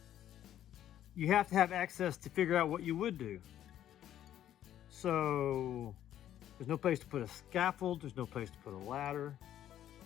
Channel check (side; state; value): right; quieter; 11.5 dB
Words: you have to have access to figure out what you would do. So there's no place to put a scaffold, there's no place to put a ladder.